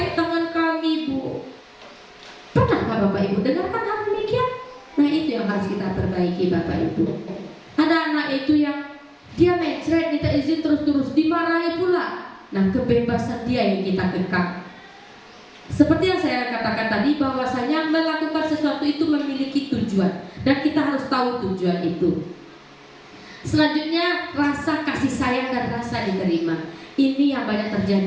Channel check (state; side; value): identical; both; correlation 1.00